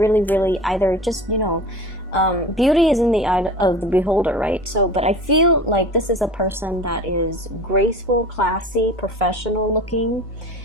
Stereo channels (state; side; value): normal; both; correlation 0.37